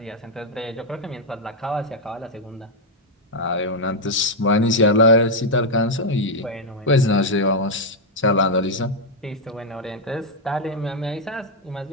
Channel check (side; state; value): both; normal; correlation 0.00